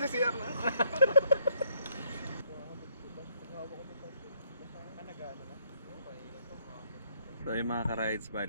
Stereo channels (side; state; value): both; inverted; correlation -0.70